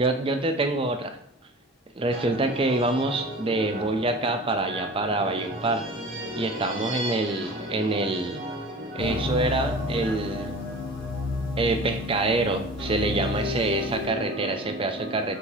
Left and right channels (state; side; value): normal; both; correlation 0.38